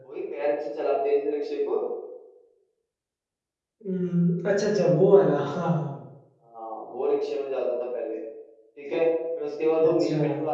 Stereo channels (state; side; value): identical; both; correlation 1.00